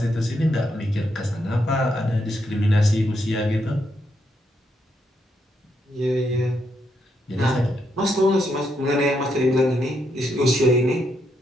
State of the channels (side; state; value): both; normal; correlation 0.79